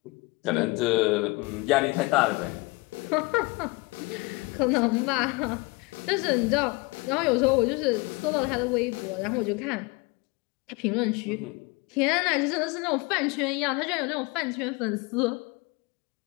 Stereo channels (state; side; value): quieter; right; 25.9 dB